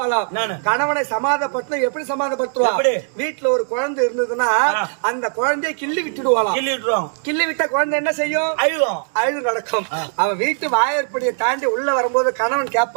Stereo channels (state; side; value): silent; left; 66 dB below the other